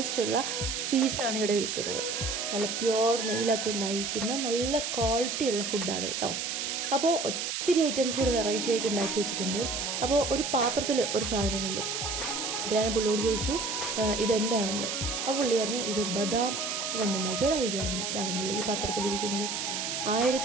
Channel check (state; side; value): noise; right; hiss, 2 dB below the sound